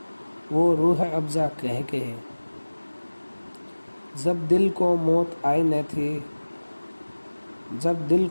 वो रूह अफ़ज़ा कह कहे। जब दिल को मौत आई न थी, जब दिल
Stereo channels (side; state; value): both; inverted; correlation -1.00